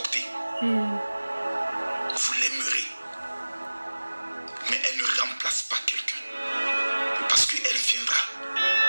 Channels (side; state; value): both; inverted; correlation -1.00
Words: Vous l'aimerez. Mais elle ne remplace pas quelqu'un. Parce qu'elle viendra